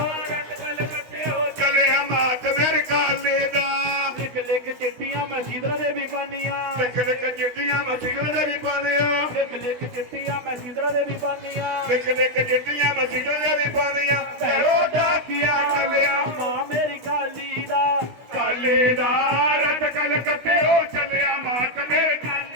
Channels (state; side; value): late; left; 16 ms